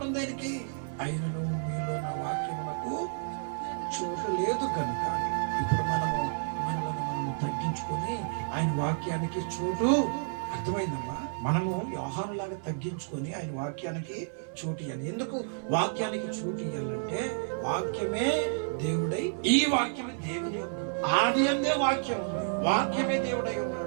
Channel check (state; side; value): silent; left; 57 dB below the other